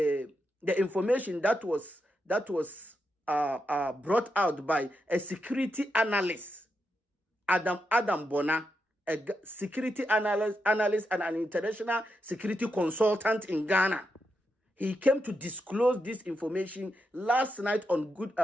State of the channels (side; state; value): both; normal; correlation 0.85